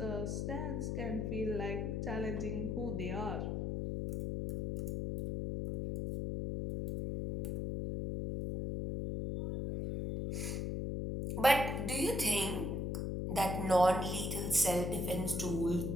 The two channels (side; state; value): left; noise; hum, 1 dB below the sound